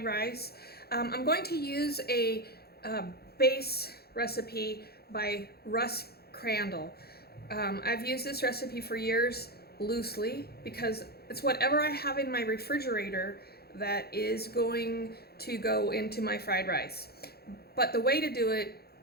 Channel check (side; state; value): right; late; 0.46 ms